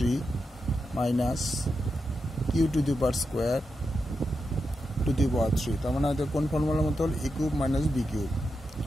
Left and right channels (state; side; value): normal; both; correlation 0.87